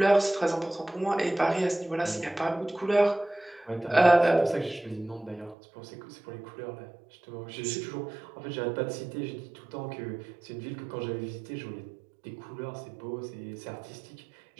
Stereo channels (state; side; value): drops out; left; at 5.6 s